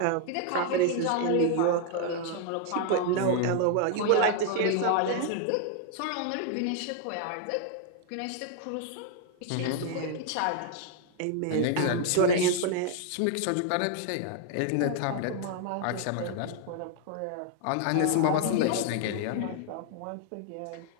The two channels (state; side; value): different; both; correlation 0.00